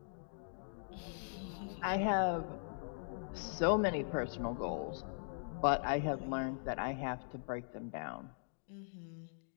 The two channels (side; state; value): right; silent; digital silence